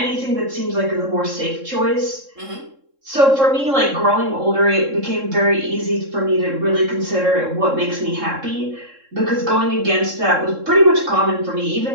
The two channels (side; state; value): left; late; 3.7 ms